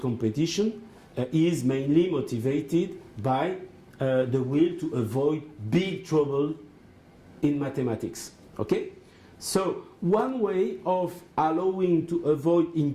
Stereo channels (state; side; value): identical; both; correlation 1.00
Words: competition is mainly motivated by the will to avoid big trouble in mathematics. Okay? So one way of allowing to avoid